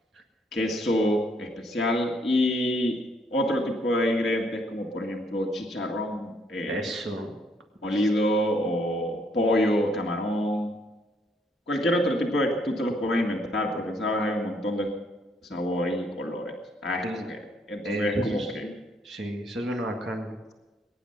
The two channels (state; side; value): normal; both; correlation 0.69